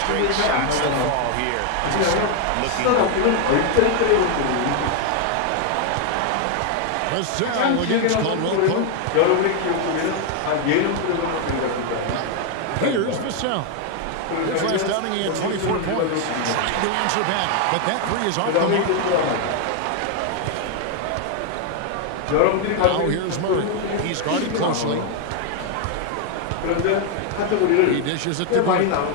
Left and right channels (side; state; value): both; different; correlation 0.01